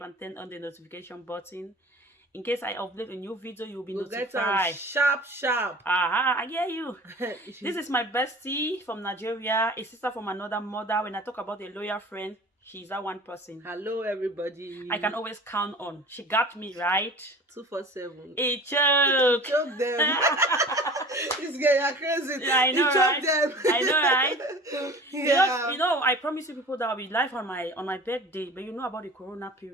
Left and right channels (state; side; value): normal; both; correlation 0.41